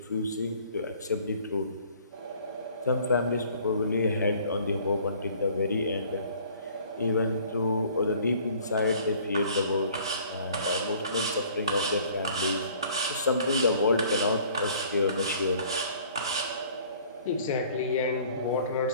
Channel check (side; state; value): both; inverted; correlation -0.54